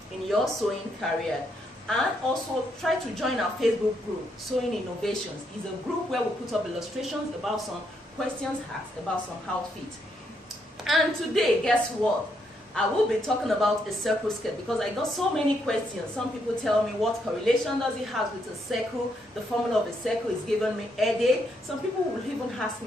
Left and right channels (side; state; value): both; normal; correlation 0.76